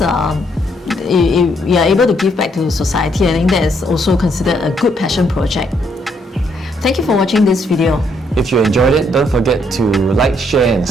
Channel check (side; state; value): both; normal; correlation 0.72